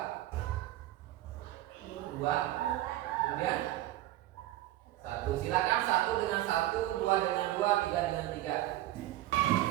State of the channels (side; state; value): left; quieter; 15.3 dB